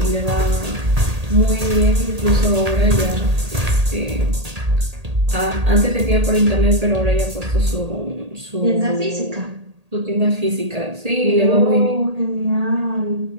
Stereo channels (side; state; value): left; late; 1.8 ms